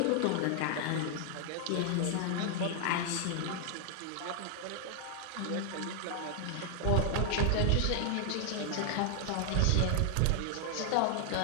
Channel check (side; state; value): both; different; correlation 0.00